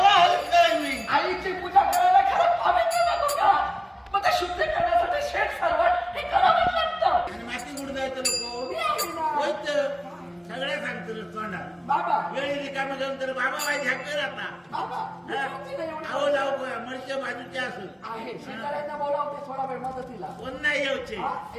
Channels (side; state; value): both; identical; correlation 1.00